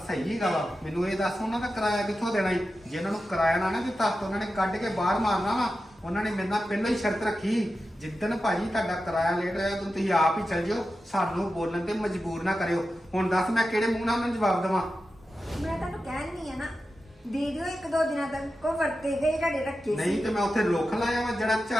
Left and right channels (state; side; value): normal; both; correlation 0.92